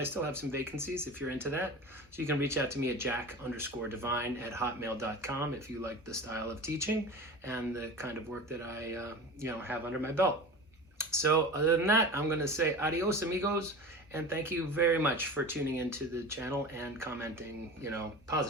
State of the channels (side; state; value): both; normal; correlation 0.33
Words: still have some vacancies if you're into that. So you can reach out to me at jack_divine@hotmail.com if you like the style of teaching and the kind of work that I have under my belt. So other than that, I'm going to say adios, amigos, and thank you very much for tuning into the channel and commenting,